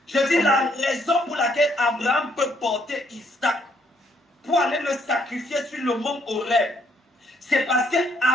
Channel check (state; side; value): normal; both; correlation 0.70